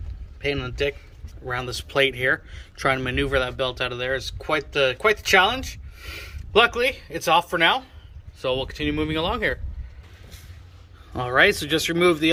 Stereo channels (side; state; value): both; identical; correlation 1.00